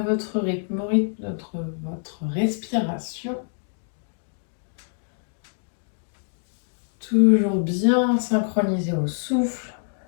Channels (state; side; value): silent; right; digital silence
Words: votre rythme, votre respiration. Toujours bien synchronisé au souffle.